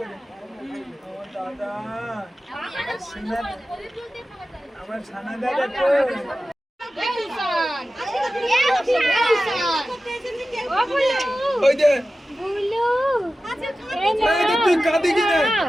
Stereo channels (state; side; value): normal; both; correlation 0.95